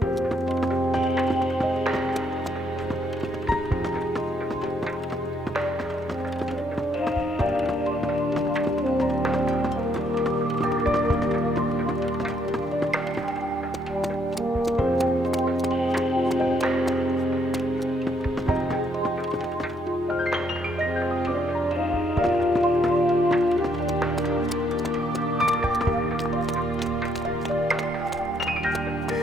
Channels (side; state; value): both; normal; correlation 0.72